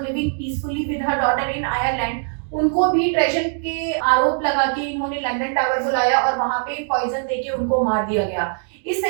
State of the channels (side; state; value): left; silent; 65 dB below the other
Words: living peacefully with her daughter in Ireland. उनको भी ट्रेजन के आरोप लगा के इन्होंने लंदन टावर बुलाया और वहां पे पॉइजन देके उनको मार दिया गया। इस